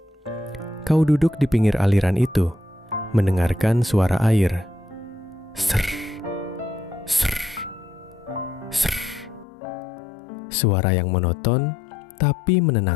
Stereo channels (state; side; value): drops out; right; at 9.5 s